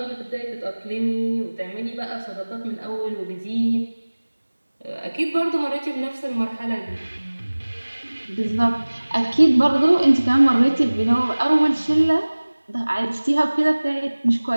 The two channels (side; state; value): both; inverted; correlation -1.00